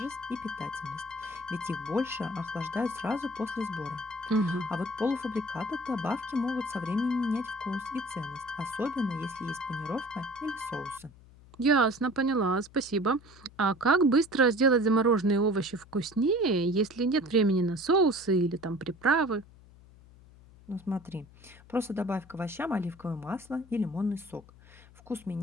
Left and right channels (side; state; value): left; noise; hum, 23 dB below the sound